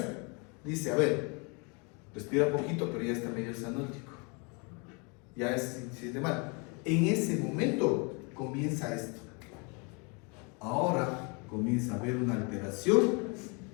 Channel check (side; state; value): right; quieter; 32.6 dB